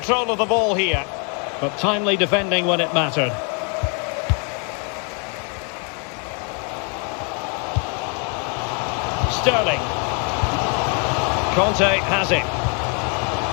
of the ball here. But timely defending when it mattered. Sterling. Conte has it.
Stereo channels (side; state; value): right; quieter; 37.9 dB